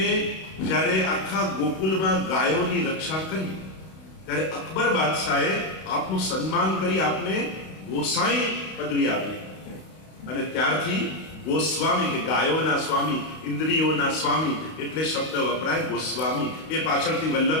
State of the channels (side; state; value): right; late; 32 ms